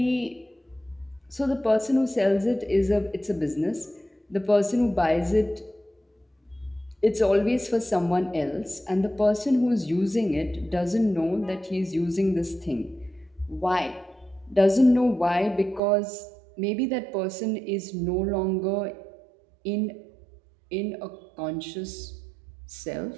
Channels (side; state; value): left; drops out; at 15.8 s